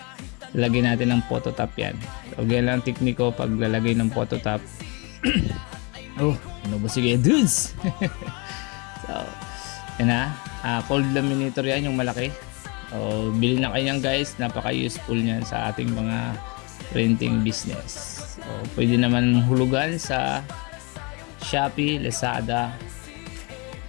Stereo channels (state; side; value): quieter; right; 30.3 dB